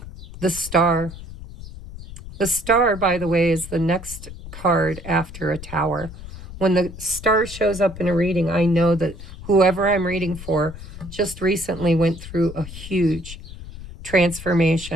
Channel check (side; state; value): left; noise; rumble, 13 dB below the sound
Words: the Star. The Star, by the way, is the next card after a Tower. When the Star shows up in a reading, I know that whoever I'm reading for just recently went through a huge